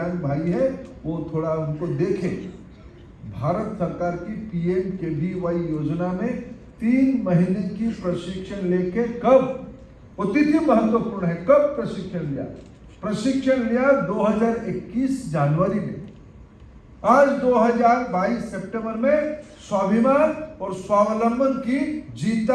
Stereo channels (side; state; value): both; identical; correlation 1.00